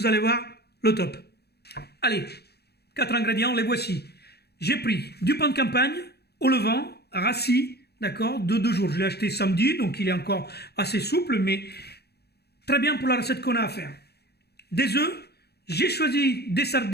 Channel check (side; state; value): right; late; 0.47 ms